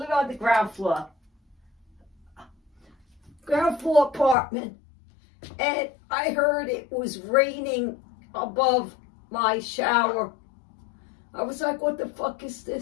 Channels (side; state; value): right; drops out; at 4.4 s